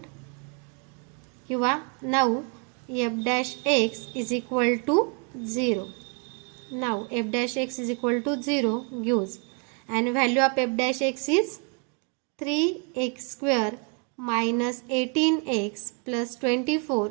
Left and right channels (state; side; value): quieter; left; 36.1 dB